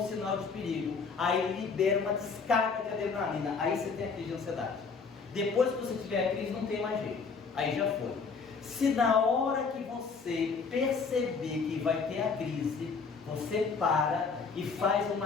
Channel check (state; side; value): quieter; right; 5.1 dB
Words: sinal de perigo. Aí ele libera uma descarga de adrenalina. Aí você tem a crise de ansiedade. Depois que você tiver a crise, não tem mais jeito. Aí já foi. Se na hora que você perceber que vai ter a crise, você para e faz